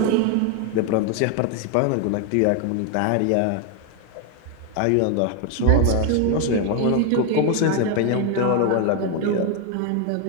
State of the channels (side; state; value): both; different; correlation 0.01